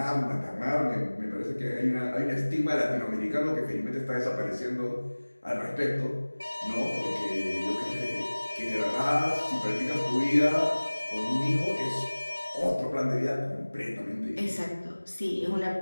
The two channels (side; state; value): both; inverted; correlation -1.00